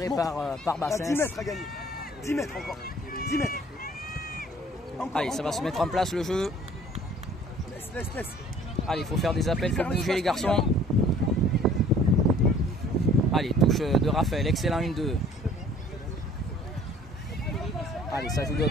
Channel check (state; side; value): normal; both; correlation 0.54